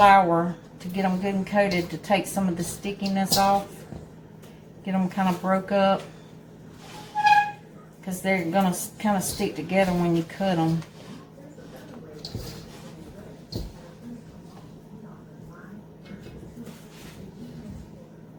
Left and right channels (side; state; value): both; identical; correlation 1.00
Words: to get them good and coated, to take some of the stickiness off, get them kind of broke up, because they're going to kind of stick together when you cut them.